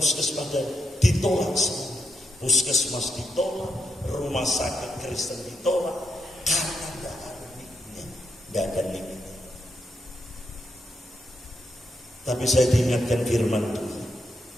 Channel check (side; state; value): both; normal; correlation 0.83